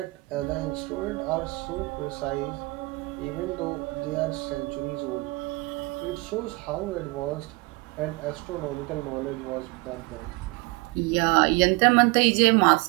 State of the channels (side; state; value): left; quieter; 24.9 dB